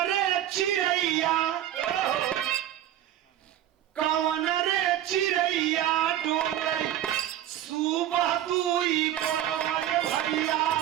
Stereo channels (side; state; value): left; quieter; 12.0 dB